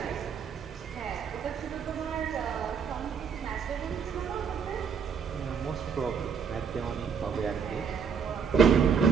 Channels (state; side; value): quieter; left; 6.6 dB